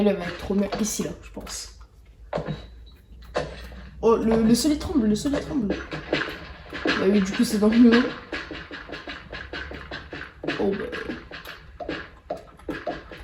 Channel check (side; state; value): both; identical; correlation 1.00